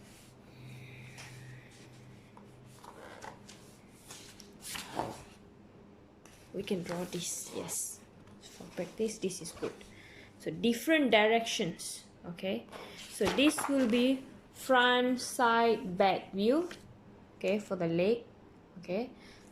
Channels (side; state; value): both; identical; correlation 1.00